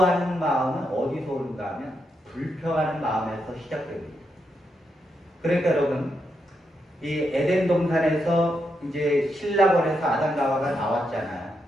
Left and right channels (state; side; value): normal; both; correlation 0.82